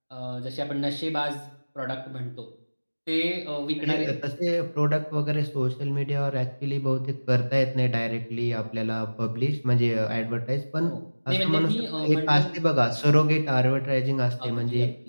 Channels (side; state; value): both; inverted; correlation -1.00